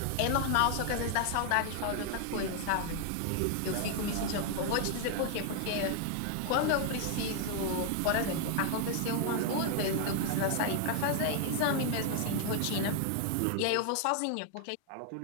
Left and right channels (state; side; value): different; both; correlation 0.00